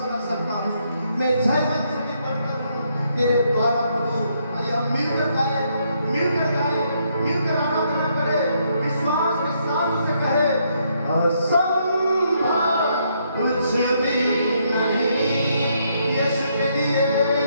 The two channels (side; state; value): both; inverted; correlation -0.74